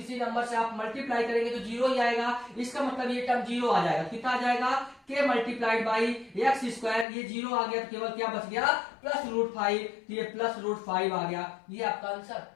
नंबर से आप मल्टीप्लाई करेंगे तो 0 ही आएगा, इसका मतलब ये टर्म 0 आ जाएगा। कितना आ जाएगा, के मल्टीप्लाइड बाई एक्स स्क्वायर, ये 0 आ गया, तो केवल क्या बच गया, प्लस √5, तो ये प्लस √5 आ गया, ये आपका आंसर।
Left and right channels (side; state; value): right; drops out; at 7.1 s